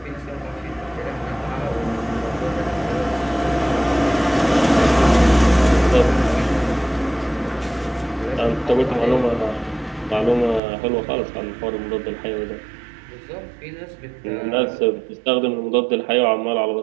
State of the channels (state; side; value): drops out; left; at 10.6 s